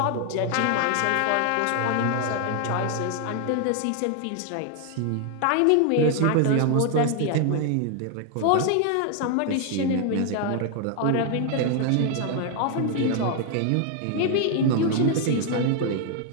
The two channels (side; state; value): both; different; correlation 0.00